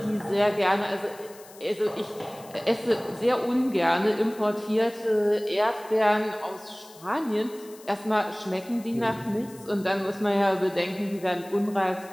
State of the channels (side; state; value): left; noise; hiss, 22 dB below the sound